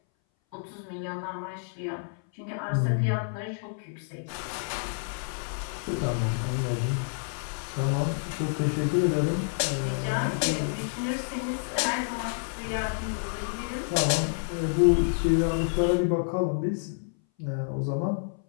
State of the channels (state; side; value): silent; right; 59 dB below the other